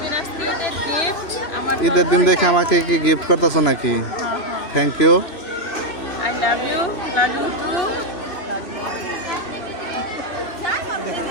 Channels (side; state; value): right; late; 2.8 ms